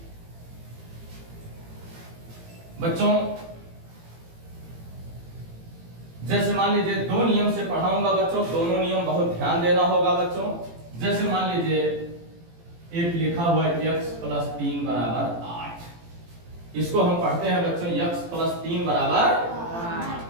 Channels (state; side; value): late; left; 18 ms